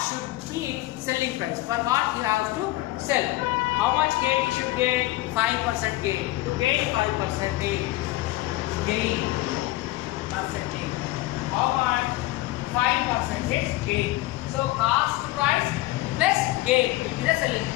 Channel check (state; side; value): quieter; right; 18.2 dB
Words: be selling price? For what you have to sell? How much gain you should gain? 5% gain. To gain 5% gain percentage. How much? 5% gain. So cost price plus gain will be the selling